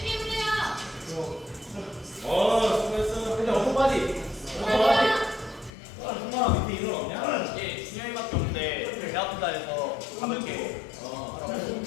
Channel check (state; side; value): drops out; right; at 5.7 s